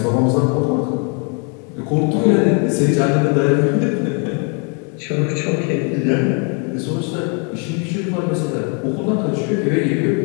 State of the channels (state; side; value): quieter; right; 37.0 dB